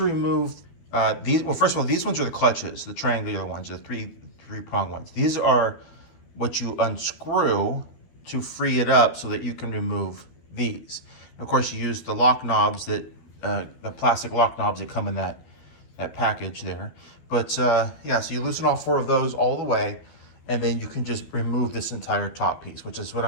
remove these, well, first of all, these ones are the clutches, the triangular ones, the three-prong ones. These are what you unscrew to free it up so that you can remove these. And of course, you use the lock knobs the plastic lock knobs that come in that package there. But yeah, so you loosen all 4 of those all the way, and then you can just remove this entire top piece, which is what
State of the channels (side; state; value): right; late; 12 ms